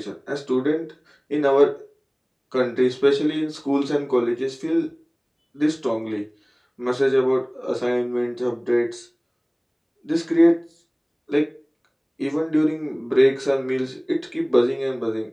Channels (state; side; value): identical; both; correlation 1.00